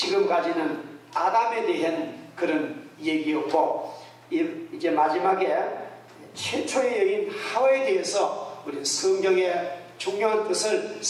아담에 대한 그런 얘기였고 이제 마지막에 최초의 여인 하와에 대해서 우리 성경의 중요한 뜻을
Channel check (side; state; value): both; identical; correlation 1.00